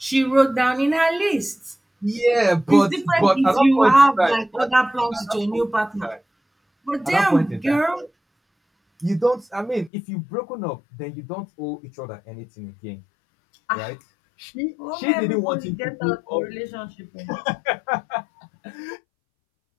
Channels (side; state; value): right; drops out; at 9.9 s